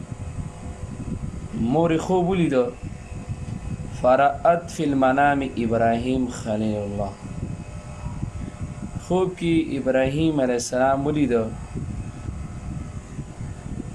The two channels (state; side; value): identical; both; correlation 1.00